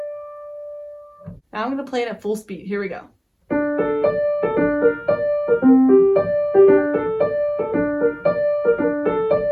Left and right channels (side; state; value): both; identical; correlation 1.00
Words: Now I'm going to play it at full speed. Here we go.